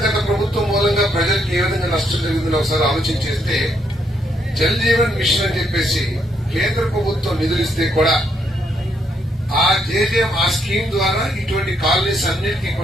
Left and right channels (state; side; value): normal; both; correlation 0.74